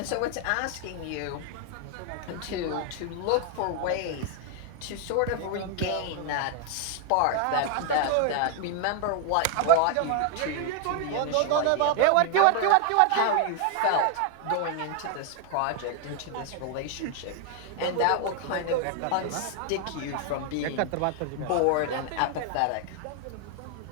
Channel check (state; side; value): different; both; correlation 0.00